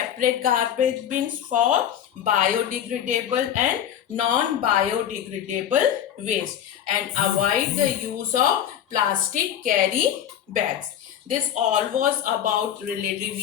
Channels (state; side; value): quieter; right; 9.9 dB